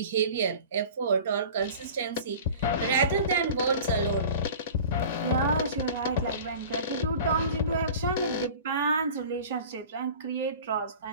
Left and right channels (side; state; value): both; inverted; correlation -0.40